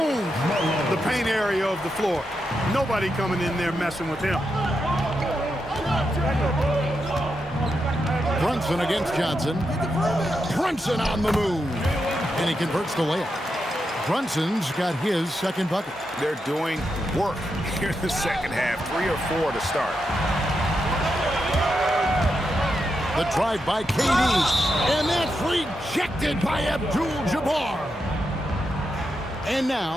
the paint area of the floor. Nobody coming in there messing with him. Brunson against Johnson. Brunson on the move. And he converts the layup. Brunson's got his second bucket. They're doing work here in the second half. 3 or 4 to start. The drive by KD, and that's rejected by Abdul-Jabbar. And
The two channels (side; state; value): both; normal; correlation 0.85